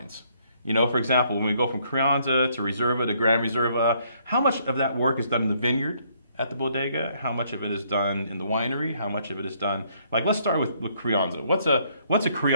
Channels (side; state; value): both; inverted; correlation -0.68